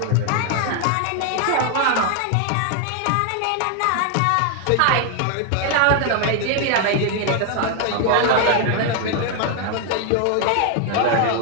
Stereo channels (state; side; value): different; both; correlation 0.00